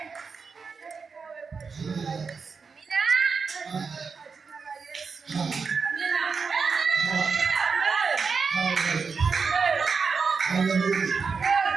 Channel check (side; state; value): left; quieter; 5.2 dB